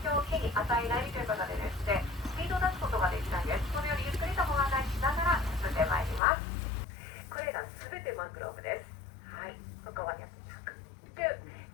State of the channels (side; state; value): right; drops out; at 6.2 s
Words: 響を木に与えないということでですね、スピードを出すことができないんです。このようにゆっくりとご案内しながら進んでまいります。これらすべてマングローブです。はい、ここまで